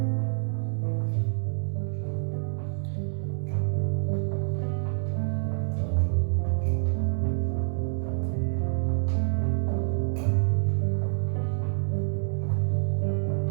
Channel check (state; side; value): silent; left; 60 dB below the other